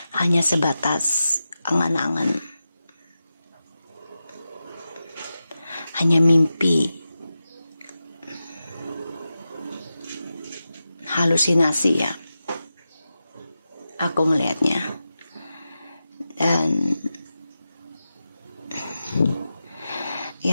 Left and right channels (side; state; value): both; inverted; correlation -0.92